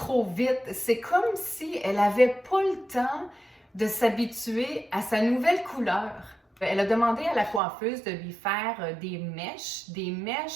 vite. C'est comme si elle n'avait pas le temps de s'habituer à sa nouvelle couleur. Elle a demandé à la coiffeuse de lui faire des mèches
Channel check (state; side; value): drops out; left; at 7.6 s